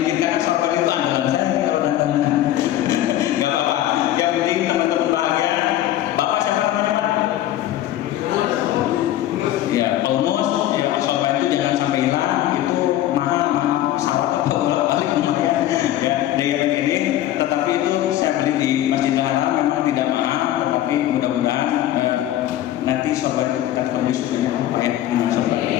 karena sorban itu andalan saya kalau ganteng. Nggak apa-apa. Yang penting teman-teman bahagia. Bapak siapa namanya Pak? Ya, almost. Ya, sorban itu jangan sampai hilang. Itu mahal pesawat atau balik lumayan. Ya, yang ini. Tetapi itu saya beli di Masjidil Haram, memang tidak mahal, tetapi mudah-mudahan nanti sorban itu kita ketemu sebenarnya apa ya?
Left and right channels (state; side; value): quieter; right; 13.2 dB